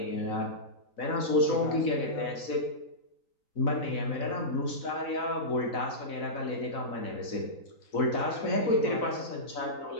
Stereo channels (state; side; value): late; right; 4.0 ms